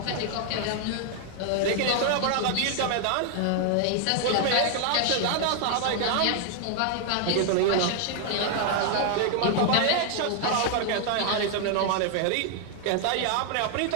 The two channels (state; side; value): different; both; correlation 0.00